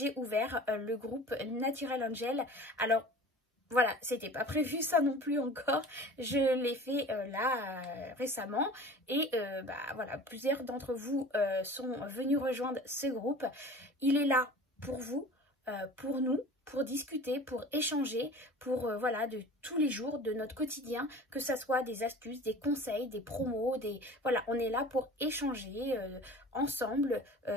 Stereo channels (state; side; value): normal; both; correlation 0.41